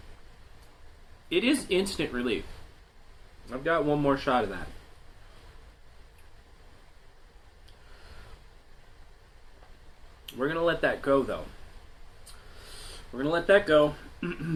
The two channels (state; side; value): identical; both; correlation 1.00